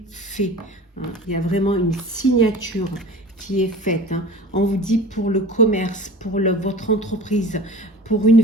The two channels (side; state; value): both; normal; correlation 0.38